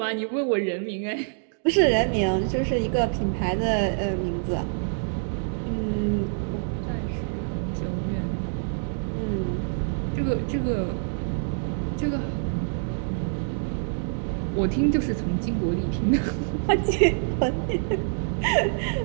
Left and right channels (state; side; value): silent; left; digital silence